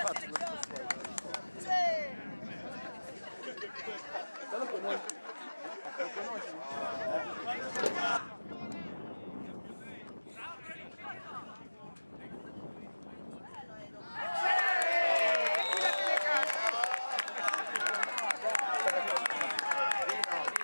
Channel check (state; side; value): inverted; both; correlation -1.00